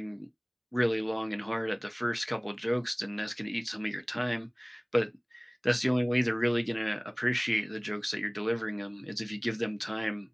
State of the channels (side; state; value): both; identical; correlation 1.00